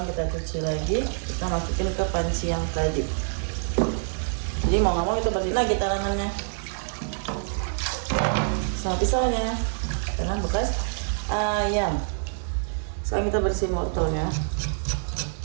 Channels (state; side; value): silent; left; 61 dB below the other